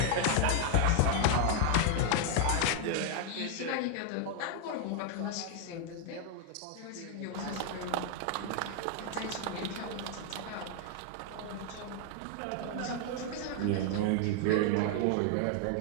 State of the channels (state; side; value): different; both; correlation 0.00